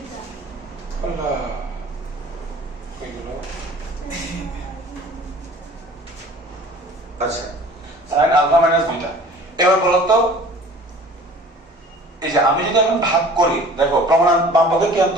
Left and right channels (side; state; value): both; normal; correlation 0.46